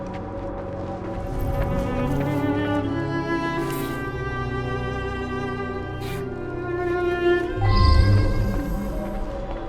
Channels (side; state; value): both; identical; correlation 1.00